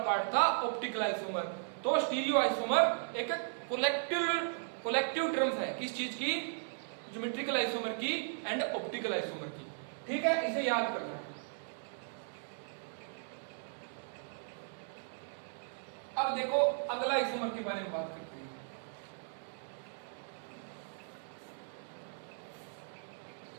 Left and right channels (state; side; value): silent; left; digital silence